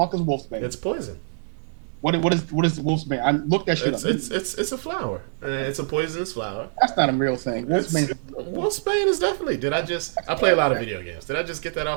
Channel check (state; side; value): silent; left; 60 dB below the other